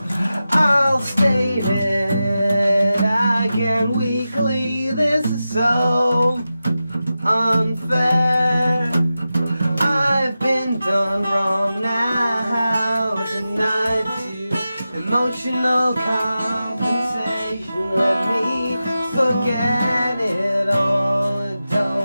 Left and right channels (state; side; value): inverted; both; correlation -0.93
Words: I'll state it again weekly, this is so unfair. I've been done wrong now, denied to emotional compensation. Let me forget it all, I